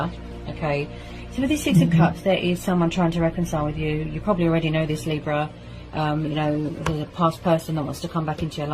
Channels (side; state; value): both; identical; correlation 1.00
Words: Okay. So with this Six of Cups, there is someone trying to reconcile with you. You probably already know this, Libra. You know, there's a past person that wants to come back into your